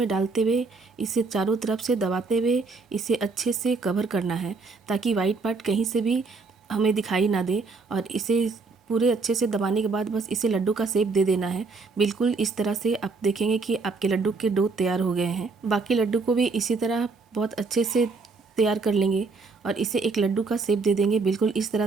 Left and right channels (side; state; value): left; quieter; 4.2 dB